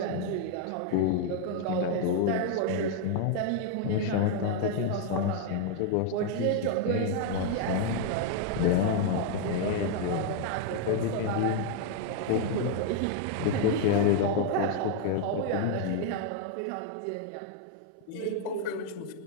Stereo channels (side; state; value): both; different; correlation 0.00